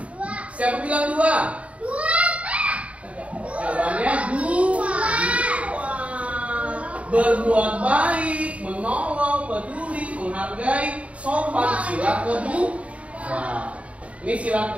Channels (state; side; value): late; left; 0.065 ms